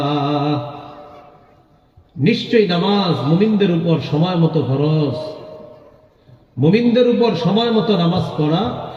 নিশ্চয়ই নামাজ মুমিনদের উপর সময় মতো ফরজ। মুমিনদের উপর সময় মতো নামাজ পড়া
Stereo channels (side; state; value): both; identical; correlation 1.00